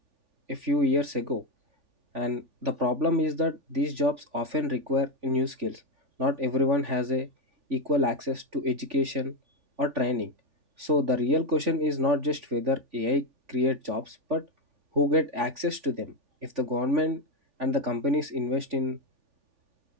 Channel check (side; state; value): left; late; 3.5 ms